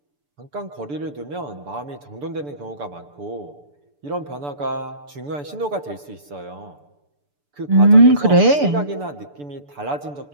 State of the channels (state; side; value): late; left; 6.9 ms